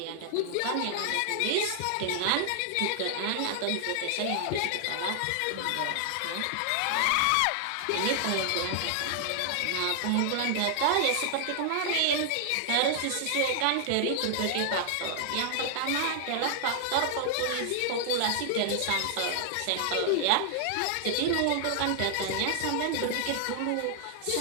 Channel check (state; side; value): different; both; correlation 0.00